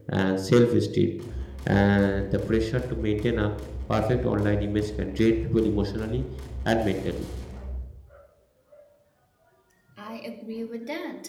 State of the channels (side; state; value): both; identical; correlation 1.00